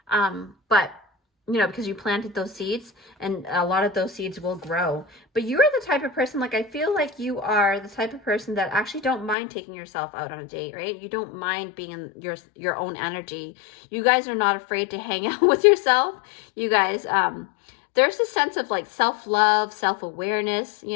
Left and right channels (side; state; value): right; drops out; at 9.3 s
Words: But because you planted those seeds, and a lot of those seeds will grow. But you're the type of person, like, I feel like you are the type of person that actually don't mind taking yourself out on a date, right? You don't mind being in your own energy. You guys are not afraid to hang out with yourself. You guys, there's a sense of, like, self-love, self-awareness,